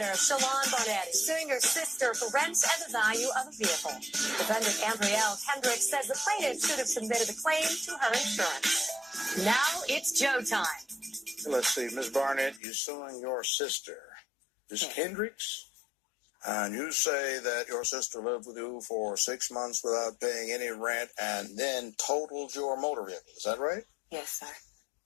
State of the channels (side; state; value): right; drops out; at 12.6 s